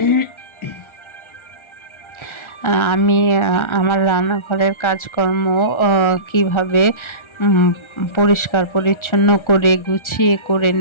আমি আমার রান্নাঘরের কাজকর্ম কিভাবে পরিষ্কার পরিচ্ছন্ন করে গুছিয়ে করে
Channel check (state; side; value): late; right; 1.4 ms